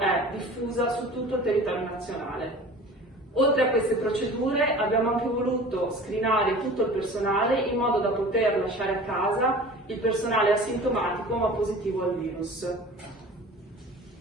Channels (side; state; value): both; normal; correlation 0.41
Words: diffusa su tutto il territorio nazionale. Oltre a queste procedure abbiamo anche voluto screenare tutto il personale in modo da poter lasciare a casa il personale asintomatico ma positivo al virus.